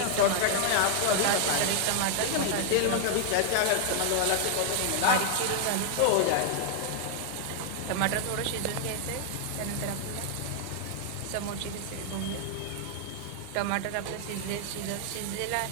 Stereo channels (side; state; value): both; different; correlation 0.00